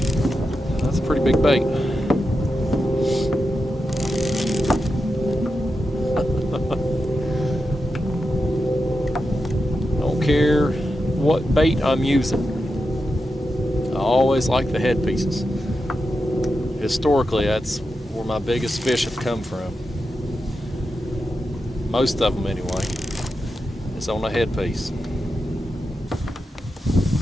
That's a pretty big bait. Don't care what bait I'm using. I always like the head pieces. Historically, that's where my biggest fish have come from. Most of them anyway. It's on a head piece.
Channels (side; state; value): both; normal; correlation 0.89